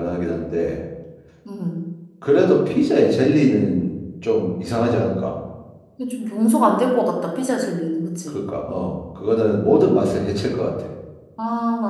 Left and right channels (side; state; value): both; identical; correlation 1.00